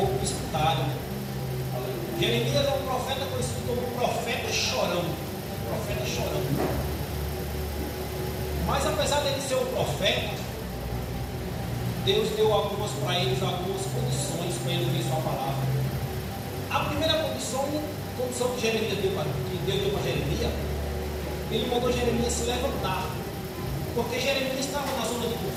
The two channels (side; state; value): both; identical; correlation 1.00